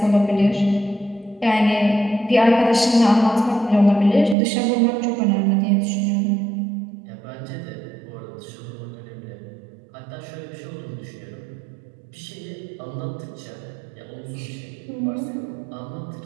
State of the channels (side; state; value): left; drops out; at 4.4 s